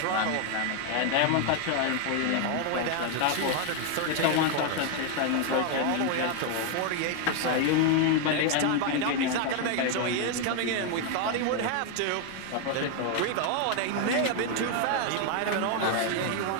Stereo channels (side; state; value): both; different; correlation 0.01